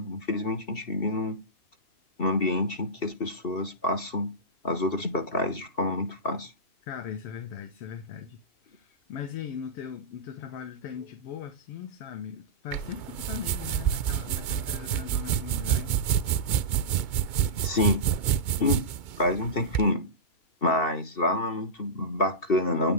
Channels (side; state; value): right; late; 2.2 ms